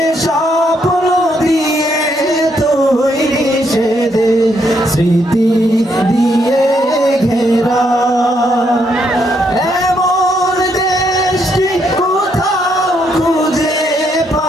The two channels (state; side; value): normal; both; correlation 0.75